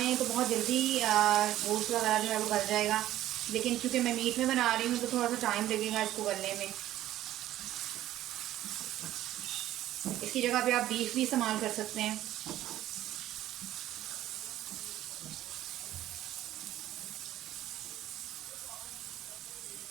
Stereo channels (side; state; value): left; quieter; 13.7 dB